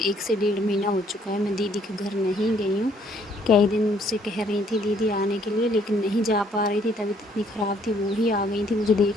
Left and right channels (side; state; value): both; normal; correlation 0.64